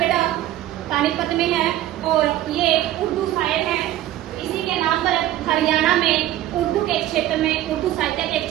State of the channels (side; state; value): left; quieter; 13.9 dB